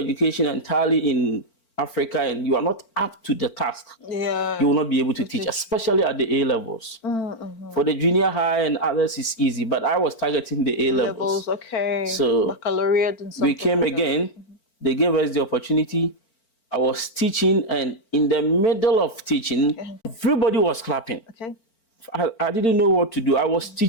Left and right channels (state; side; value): late; right; 4.4 ms